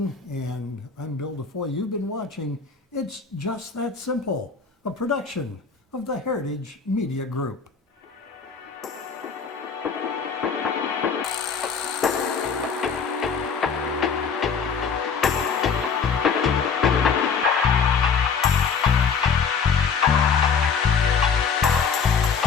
and I'm Bill DeFoi. You've been watching It's Just That Simple, a production of the Heritage Media Group.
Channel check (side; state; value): right; quieter; 6.0 dB